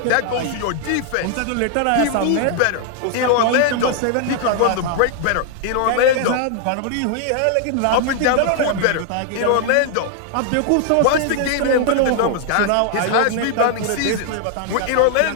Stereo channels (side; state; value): both; different; correlation 0.00